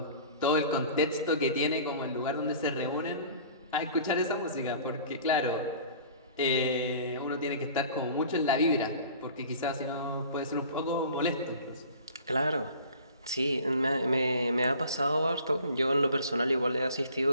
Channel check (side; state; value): both; inverted; correlation -0.45